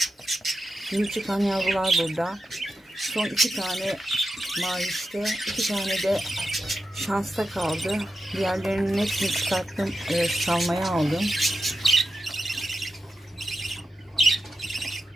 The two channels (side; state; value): both; normal; correlation 0.89